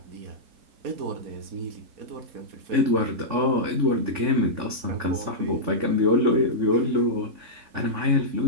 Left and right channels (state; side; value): late; left; 3.5 ms